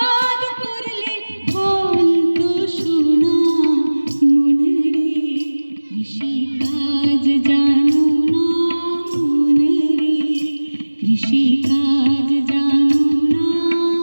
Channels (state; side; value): inverted; both; correlation -1.00